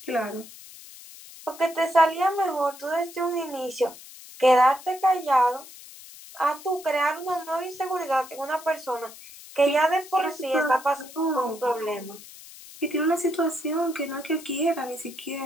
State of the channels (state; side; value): noise; left; hiss, 18 dB below the sound